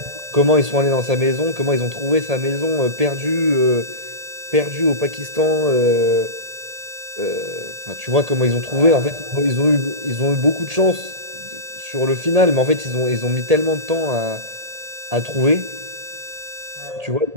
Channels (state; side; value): late; left; 1.8 ms